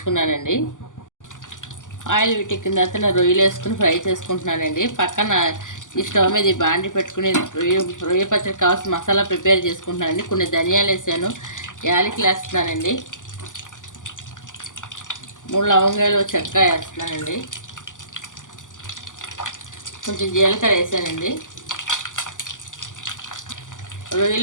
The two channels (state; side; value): late; right; 0.87 ms